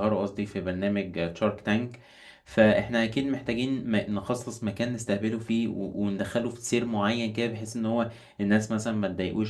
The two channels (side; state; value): both; identical; correlation 1.00